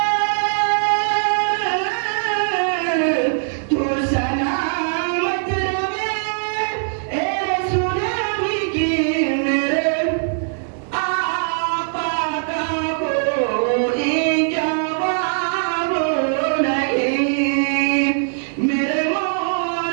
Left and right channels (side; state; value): left; silent; digital silence